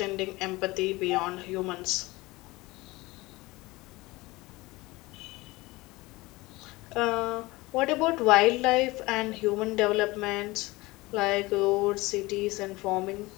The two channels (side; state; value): right; quieter; 21.5 dB